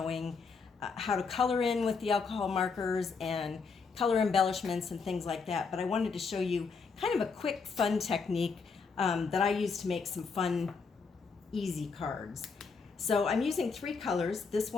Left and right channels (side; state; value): right; quieter; 4.9 dB